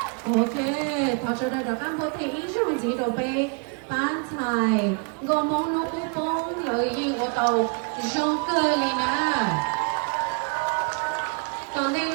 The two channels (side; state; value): left; quieter; 35.8 dB